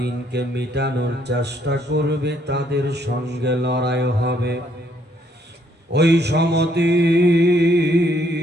মিটানোর চেষ্টা করবে, তাদের সঙ্গে লড়াই হবে। ওই সমতি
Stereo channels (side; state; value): both; normal; correlation 0.69